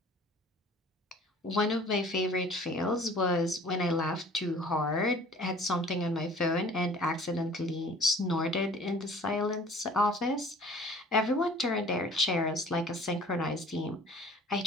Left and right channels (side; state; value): both; normal; correlation 0.49